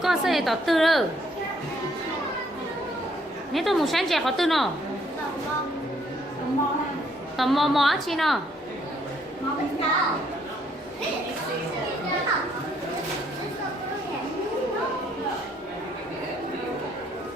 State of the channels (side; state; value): both; normal; correlation 0.68